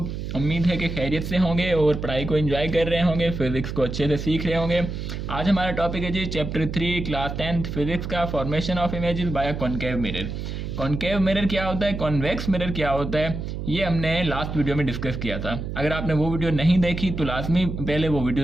उम्मीद है कि खैरियत से होंगे और पढ़ाई को एंजॉय कर रहे होंगे, फिजिक्स को अच्छे से सीख रहे होंगे। आज हमारा टॉपिक है जी चैप्टर 3 क्लास 10th फिजिक्स का, formation of images bye concave mirror. Concave mirror क्या होता है, कॉन्वेक्स मिरर क्या होता है, ये हमने लास्ट वीडियो में डिस्कस किया था। अगर आपने वो वीडियो नहीं देखी तो लाजमी पहले वो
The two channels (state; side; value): noise; right; hum, 6 dB below the sound